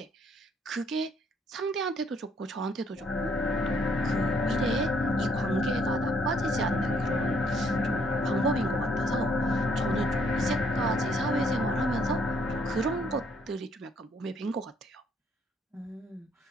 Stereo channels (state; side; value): normal; both; correlation 0.67